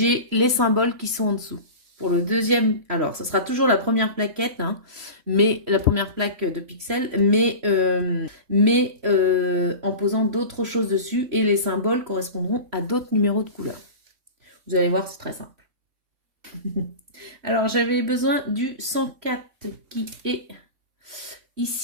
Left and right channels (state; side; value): late; left; 3.1 ms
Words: les symboles qui sont en dessous. Pour le deuxième, alors, ça sera toujours la première plaquette, hein, mais la première plaque de pixels, mais en posant d'autres choses dessus et les symboles correspondront à d'autres numéros de couleurs. Vous allez voir, c'est très simple. Alors, j'avais besoin du 104 qui est